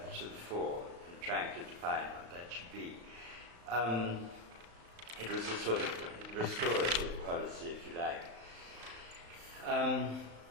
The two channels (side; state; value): left; late; 35 ms